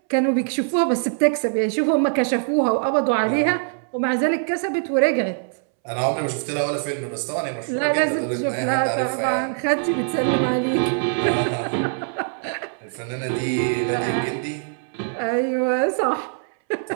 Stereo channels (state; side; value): silent; left; 64 dB below the other